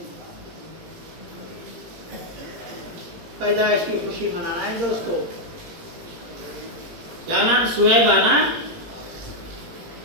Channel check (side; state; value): left; late; 18 ms